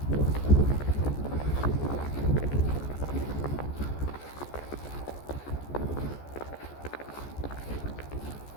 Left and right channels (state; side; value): late; right; 14 ms